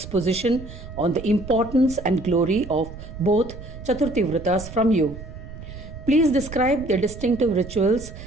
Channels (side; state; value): right; noise; rumble, 13 dB below the sound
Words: on the importance and glory of both Chaturthi vratas from you. Please describe their distinctive rituals